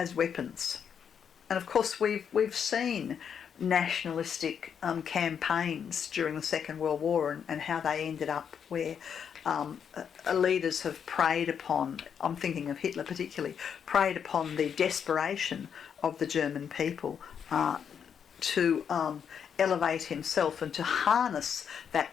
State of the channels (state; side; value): quieter; right; 7.6 dB